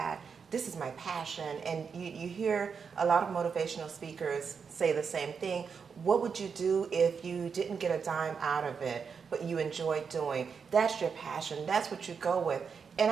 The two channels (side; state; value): left; quieter; 6.0 dB